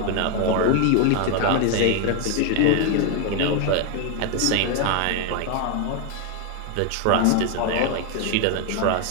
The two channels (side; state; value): both; different; correlation 0.01